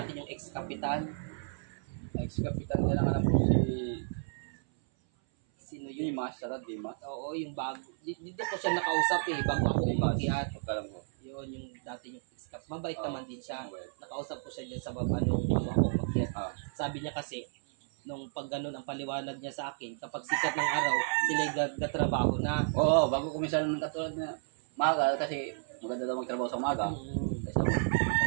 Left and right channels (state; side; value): silent; left; 56 dB below the other